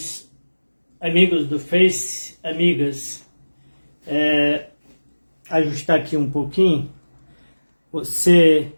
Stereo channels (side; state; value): both; inverted; correlation -1.00